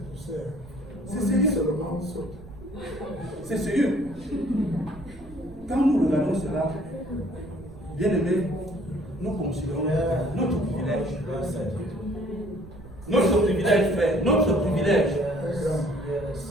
tout ça. C'est sérieux. Seulement saute. C'est sérieux. Quand nous regardons cela, bien aimé, nous considérons notre privilège. Notre privilège, frère. Notre privilège.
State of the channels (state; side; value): noise; right; rumble, 19 dB below the sound